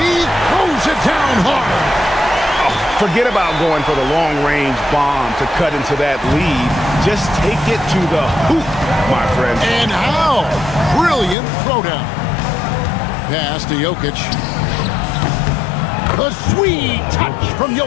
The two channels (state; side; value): drops out; right; at 11.4 s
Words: throws it down hard. Forget about going for the long-range bomb to cut into that lead. Just take it to the hoop, my friend. And how? Brilliant throwdown. Pass to Jokic. A sweet touch from